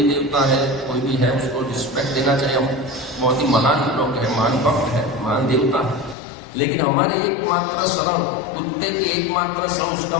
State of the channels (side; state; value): right; drops out; at 6.2 s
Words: देवता है, कोई भी है, उसको रिस्पेक्ट देना चाहिए। हम बहुत ही महान लोग हैं, महान भक्त है, महान देवता है, लेकिन हमारी एकमात्र शरण, कुत्ते की एकमात्र शरण उसका